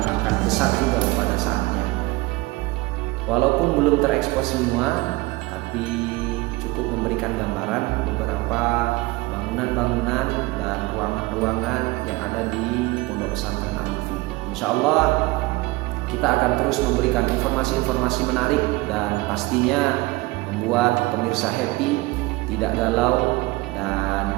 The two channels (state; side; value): quieter; left; 21.5 dB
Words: akan besar juga pada saatnya. Walaupun belum terekspos semua, tapi cukup memberikan gambaran beberapa bangunan-bangunan dan ruangan-ruangan yang ada di Pondok Pesantren Al-Lutfi. Insya Allah kita akan terus memberikan informasi-informasi menarik dan pastinya membuat pemirsa happy, tidak galau, dan